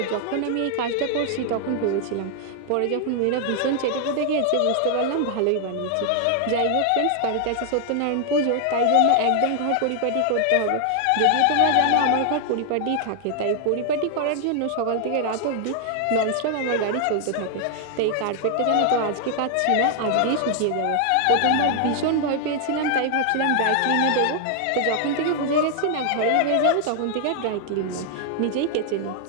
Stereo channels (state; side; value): different; both; correlation 0.00